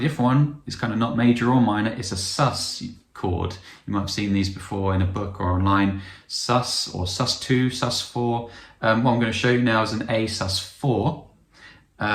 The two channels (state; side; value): identical; both; correlation 1.00